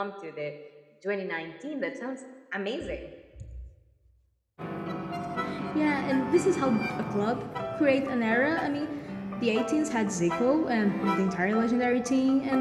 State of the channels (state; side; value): identical; both; correlation 1.00